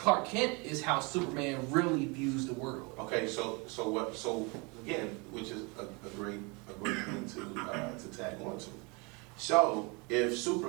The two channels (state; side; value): quieter; left; 29.4 dB